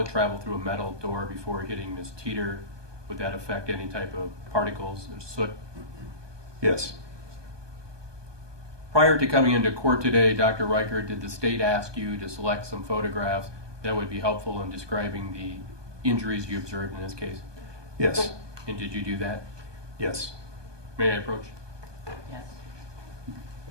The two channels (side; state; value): left; late; 1.2 ms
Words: traveled through a metal door before hitting Ms. Teeter, would that affect any type of particles or soot? Yes. Prior to coming into court today, Dr. Ryker, did the state ask you to select some photographs that would be helpful in describing the injuries you observed in this case? Yes. And did you do that? Yes. May I approach? Yes.